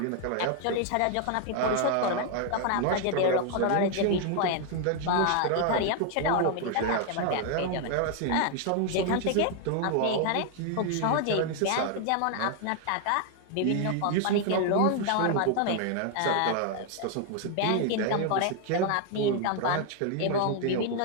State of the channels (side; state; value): both; different; correlation 0.00